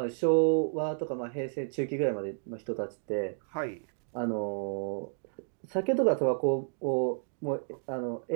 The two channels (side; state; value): left; silent; digital silence